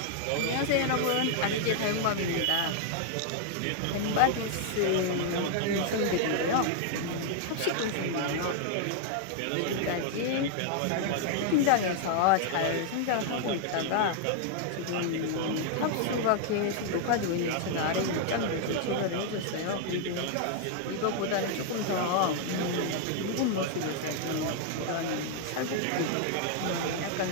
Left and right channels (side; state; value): both; different; correlation 0.00